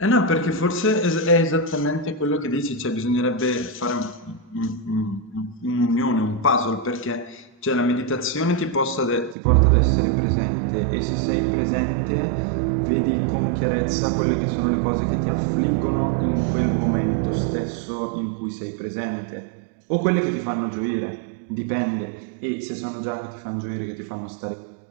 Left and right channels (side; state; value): left; drops out; at 9.3 s